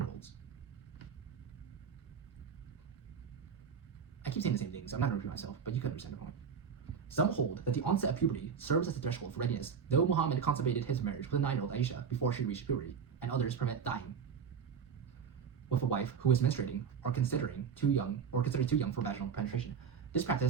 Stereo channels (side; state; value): left; quieter; 6.7 dB